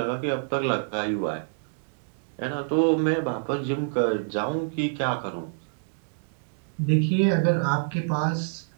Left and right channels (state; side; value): silent; left; digital silence